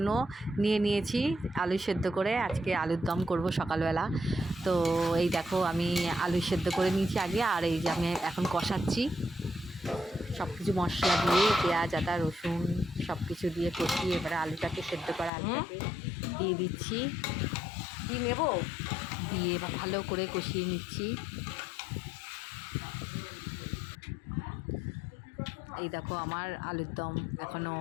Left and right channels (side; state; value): right; drops out; at 15.3 s